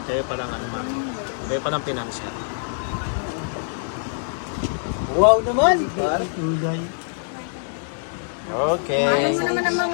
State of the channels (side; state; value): right; silent; digital silence